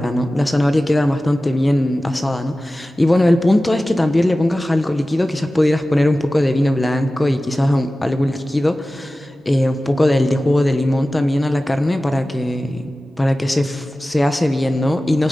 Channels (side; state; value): both; normal; correlation 0.96